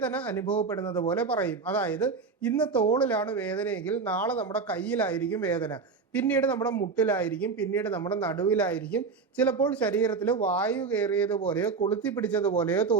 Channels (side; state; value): left; quieter; 4.9 dB